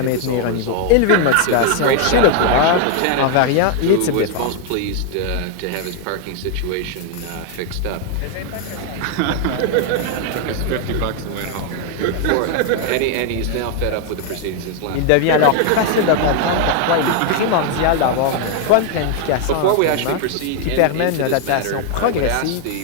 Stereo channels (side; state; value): both; different; correlation 0.00